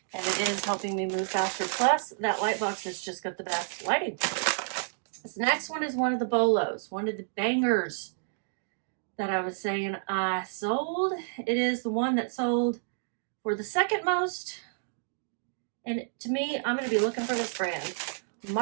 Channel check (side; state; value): left; silent; digital silence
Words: and it is helping me move faster. Plus that Lightbox has just got the best lighting. This next one is one of the bolos, one of the bangers that I was saying I sold. It is the one that sold for the second most. And to me, I'm going to be looking for this brand,